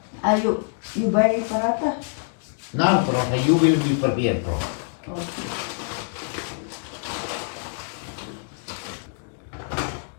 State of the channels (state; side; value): silent; right; digital silence